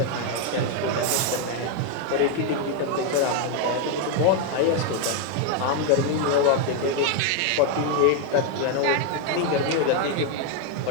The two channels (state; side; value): different; both; correlation 0.01